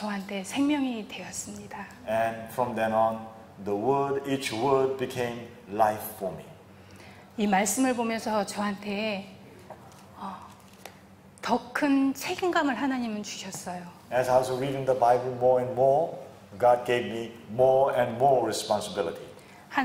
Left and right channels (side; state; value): both; identical; correlation 1.00